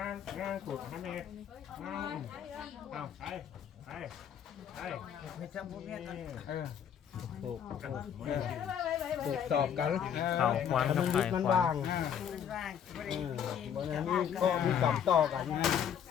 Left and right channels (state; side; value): quieter; right; 8.6 dB